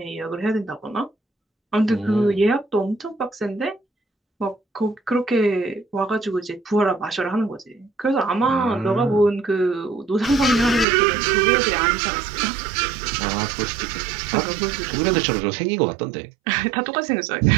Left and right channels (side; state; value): left; drops out; at 10.9 s